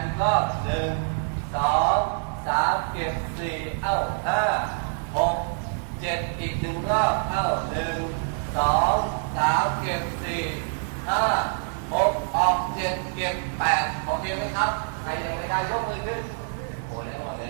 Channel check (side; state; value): left; silent; digital silence